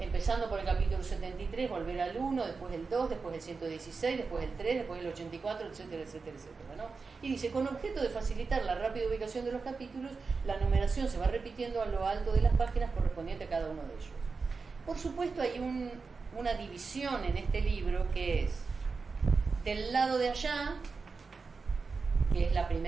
por el capítulo 73, volver al 1, después el 2, después el 116, después el 3, después el 84, etcétera, etcétera, etcétera, ¿no? Y dice, con objeto de facilitar la rápida ubicación de los capítulos, la numeración se va repitiendo a lo alto de las páginas correspondiente a cada uno de ellos. Por supuesto, hay una división en este libro que es del lado de allá, que es la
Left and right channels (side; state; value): left; quieter; 4.6 dB